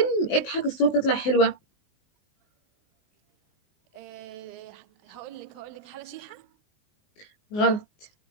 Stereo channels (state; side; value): late; right; 19 ms